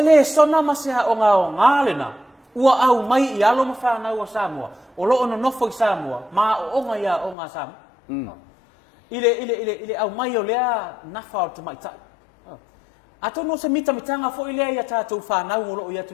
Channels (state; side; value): drops out; right; at 7.4 s